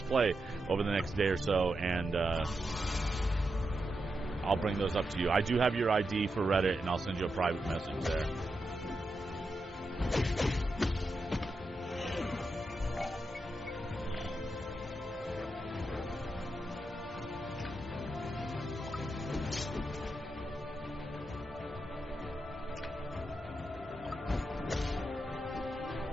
play over the next day or so, and I'll bring those up to you. I do have your ID for Reddit, and I'll send you a private message there.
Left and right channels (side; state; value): both; normal; correlation 0.86